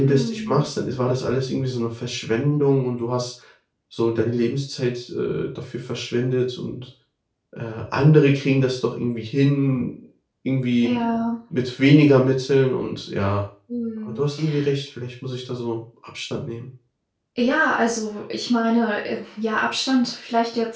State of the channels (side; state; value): both; identical; correlation 1.00